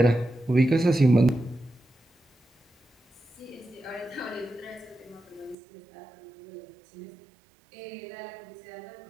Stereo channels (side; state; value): left; drops out; at 5.6 s